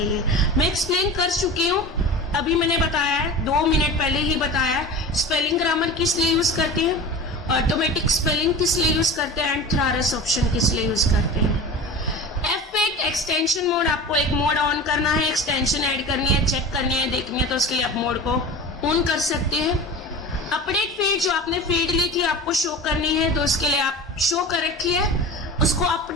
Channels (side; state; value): both; normal; correlation 0.33